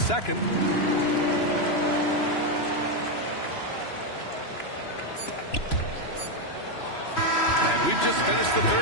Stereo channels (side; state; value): right; late; 3.0 ms